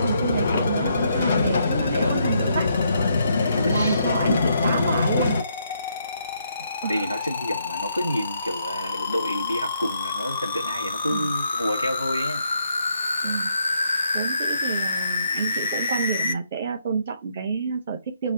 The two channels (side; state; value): both; inverted; correlation -0.74